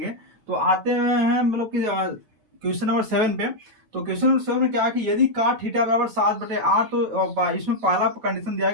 तो आते हैं मतलब कि क्वेश्चन नंबर 7 पे। तो क्वेश्चन नंबर 7 में क्या है कि यदि cot थीटा बराबर 7/8, तो इसमें पहला कंडीशन दिया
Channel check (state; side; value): late; left; 8.8 ms